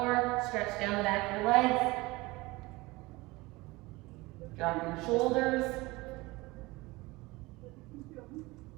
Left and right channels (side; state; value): left; quieter; 22.0 dB